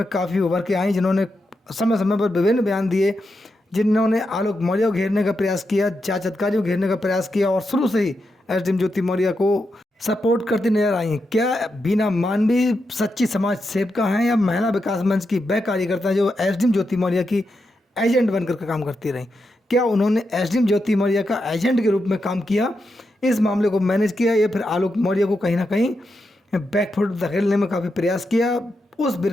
काफ़ी उभर के आई, जिन्होंने समय समय पर विभिन्न बयान दिए, जिन्होंने आलोक मौर्य को घेरने का प्रयास किया, जांच अधिकारी को घेरने का प्रयास किया और शुरू से ही एसडीएम ज्योति मौर्य को सपोर्ट करती नजर आई। क्या बीना मानवी सच्ची समाज सेविका हैं या महिला विकास मंच की वह कार्यकर्ता जो एसडीएम ज्योति मौर्य की एजेंट बनकर के काम करती रहीं? क्या उन्होंने एसडीएम ज्योति मौर्य का एजेंट के रूप में काम किया, इस मामले को मैनेज किया, या फिर आलोक मौर्य को कहीं ना कहीं बैकफुट धकेलने में काफ़ी प्रयास किया? उस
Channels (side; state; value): both; normal; correlation 0.86